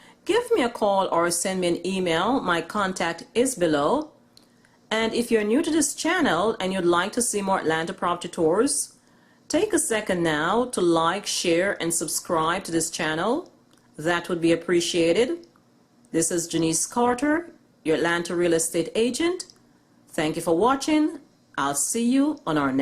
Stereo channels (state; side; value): identical; both; correlation 1.00